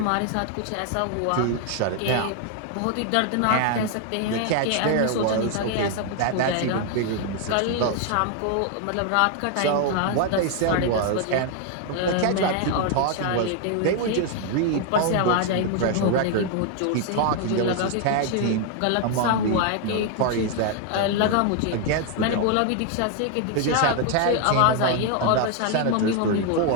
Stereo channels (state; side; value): different; both; correlation 0.01